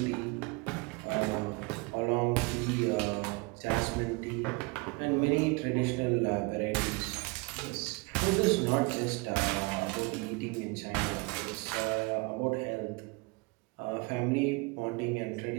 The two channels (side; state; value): left; quieter; 27.6 dB